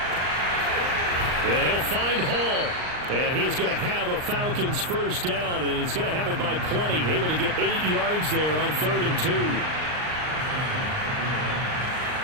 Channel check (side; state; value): left; late; 39 ms